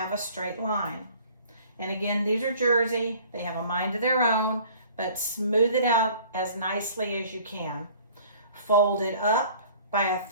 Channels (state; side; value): inverted; both; correlation -0.51